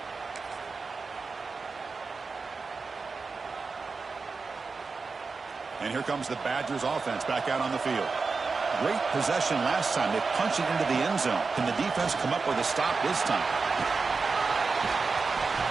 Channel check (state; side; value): quieter; left; 4.5 dB